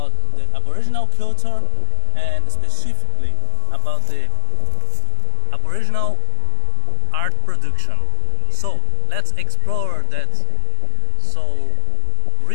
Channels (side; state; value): both; different; correlation 0.00